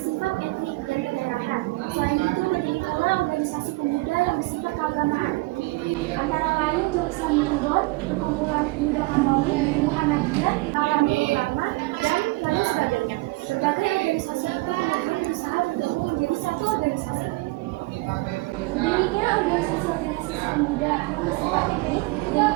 etnik dan kedaerahan. Selain itu, berdiri pula organisasi pemuda yang bersifat keagamaan. Antara lain Jong Samindon, Perkumpulan Pemuda Katolik, Muhammadiyah, Alami Ulama, dan lain sebagainya. Berbagai organisasi itu kemudian berusaha bergabung menjadi satu organisasi. Berdirinya organisasi-organisasi pemuda yang bersifat etnik dan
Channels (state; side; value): quieter; left; 23.1 dB